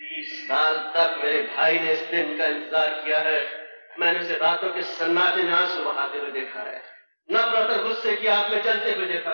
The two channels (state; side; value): inverted; both; correlation -1.00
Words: 20 साल तक मेरे भाई ने इस दिन का इंतजार किया है। मैंने उसे रातों के सन्नाटे में आंसू बहाते हुए देखा है, नफरत और गुस्से की आग में जलते हुए